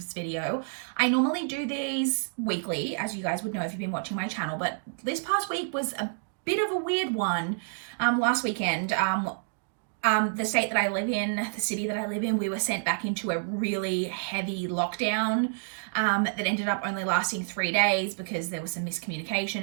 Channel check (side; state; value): left; silent; digital silence